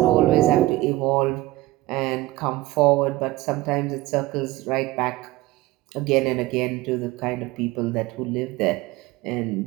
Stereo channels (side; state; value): left; quieter; 18.4 dB